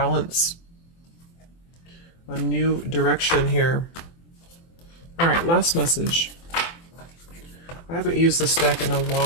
A new direction here. All right, last message. I haven't used this deck in a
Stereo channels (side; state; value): right; late; 24 ms